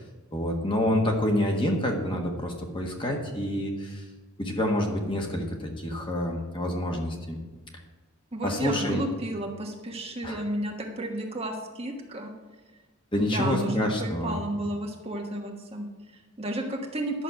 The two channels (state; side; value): normal; both; correlation 0.57